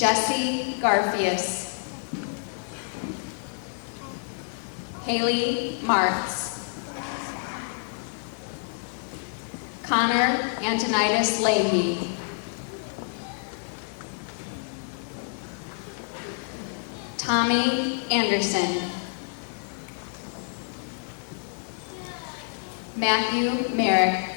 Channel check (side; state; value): right; silent; digital silence